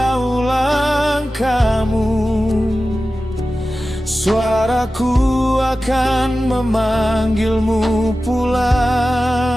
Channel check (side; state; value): both; normal; correlation 0.95